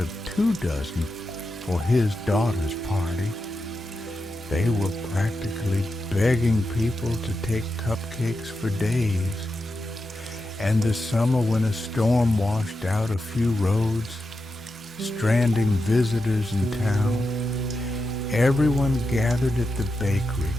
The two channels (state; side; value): normal; both; correlation 0.88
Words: 2 dozen for his daughter's party. They were practically begging people to take cupcakes for days. And the summer when a storm washed out a few roads, stranding visitors in town, everyone gathered at the bakery,